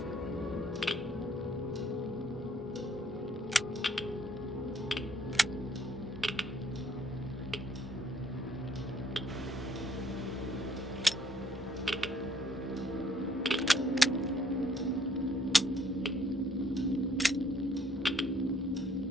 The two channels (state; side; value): normal; both; correlation 0.65